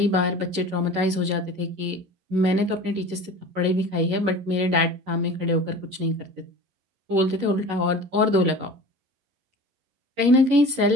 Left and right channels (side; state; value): left; late; 11 ms